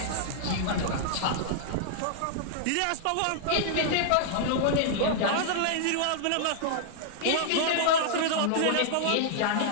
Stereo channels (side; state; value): both; different; correlation -0.01